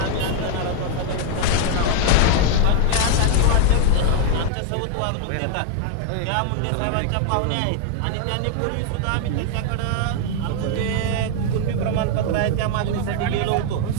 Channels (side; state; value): both; different; correlation 0.00